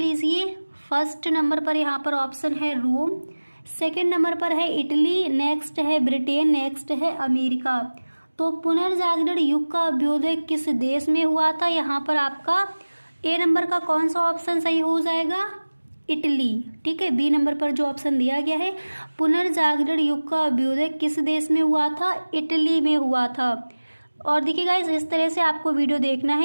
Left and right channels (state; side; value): inverted; both; correlation -1.00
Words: फर्स्ट नंबर पर यहाँ पर ऑप्शन है रोम, सेकेंड नंबर पर है इटली, नेक्स्ट है ब्रिटेन, नेक्स्ट है अमेरिका। तो पुनर्जागरण युग का अभ्युदय किस देश में हुआ था? यहाँ पर आपका ए नंबर का कौन सा ऑप्शन सही हो जाएगा? इटली, ठीक है। बी नंबर पर जो ऑप्शन दिया गया है पुनर्जागरण युग का अभ्युदय किस देश में हुआ था? इटली में हुआ था। और देखिए गाइस इस तरह से आपको वीडियो देखना